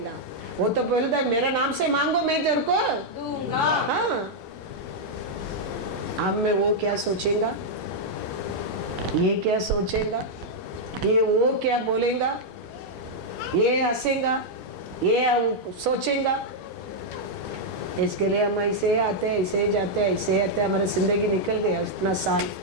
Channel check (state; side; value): normal; both; correlation -0.04